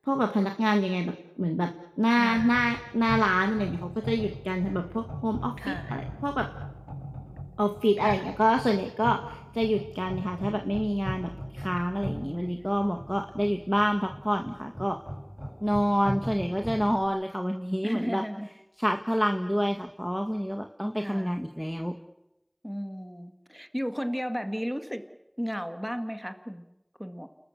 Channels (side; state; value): both; identical; correlation 1.00